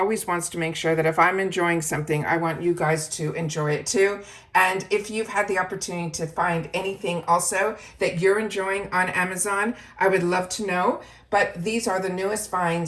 wants to make sure that if I'm enjoying something, I want you guys to enjoy it too. And if you've had the opportunity to find anything also that you're enjoying on Amazon, I would love to know. But these are the newest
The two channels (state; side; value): identical; both; correlation 1.00